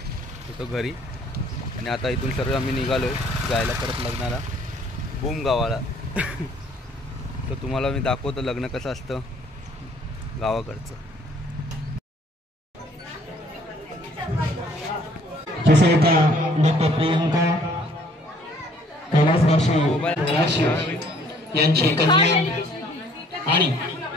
घरी. आणि आता इथून सर्व आम्ही निघालो आहे जायला परत लग्नाला बूम गावाला. तर तुम्हाला मी दाखवतो लग्न कसं असतं गावाकडचं. जसे का डॉक्टर प्रियंका कैलासवासी यांची कन्या आणि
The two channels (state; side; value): normal; both; correlation 0.59